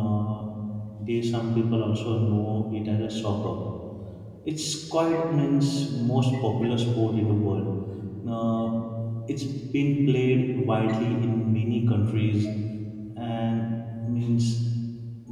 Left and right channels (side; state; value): both; identical; correlation 1.00